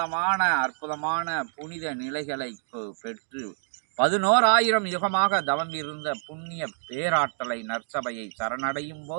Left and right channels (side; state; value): left; silent; digital silence